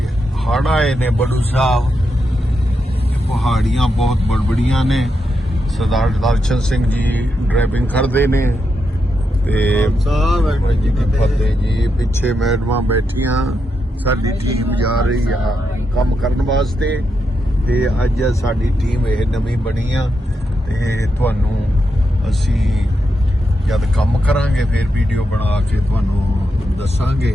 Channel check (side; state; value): both; normal; correlation 0.84